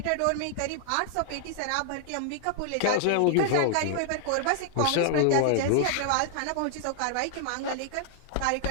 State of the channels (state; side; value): different; both; correlation -0.01